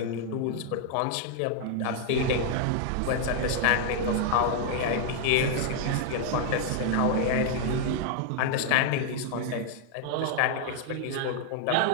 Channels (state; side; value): different; both; correlation 0.00